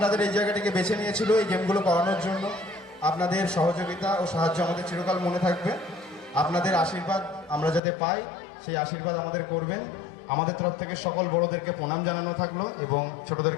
এই জায়গাটিকে বেছে নিয়েছিল এই গেমগুলো করানোর জন্য। আপনাদের সহযোগিতা ও সাহায্য আমাদের চিরকাল মনে থাকবে। আপনাদের আশীর্বাদ আমরা যাতে পাই, সেই আশীর্বাদ আমাদের করবেন। আমাদের তরফ থেকে সকল বড়দেরকে প্রণাম জানানো থাকলো এবং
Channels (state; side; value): drops out; right; at 7.8 s